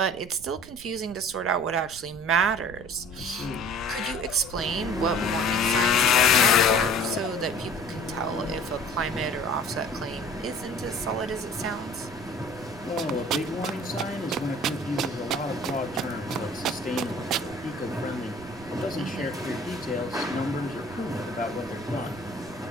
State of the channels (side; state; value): right; noise; rumble, 18 dB below the sound